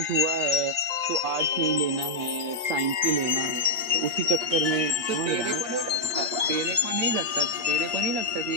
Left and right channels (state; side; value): late; left; 8.5 ms